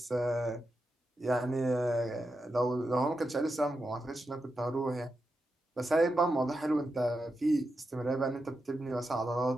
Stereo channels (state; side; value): normal; both; correlation 0.88